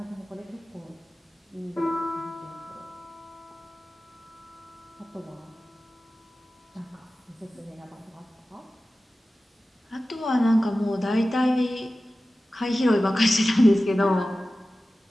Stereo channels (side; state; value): both; normal; correlation 0.95